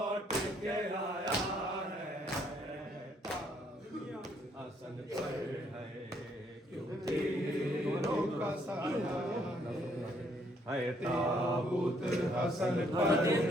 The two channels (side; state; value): both; normal; correlation 0.69